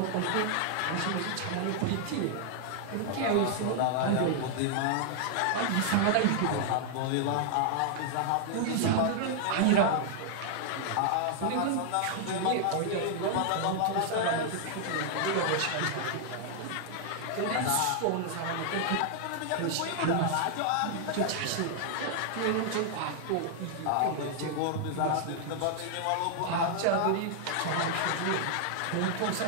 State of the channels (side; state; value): both; different; correlation -0.01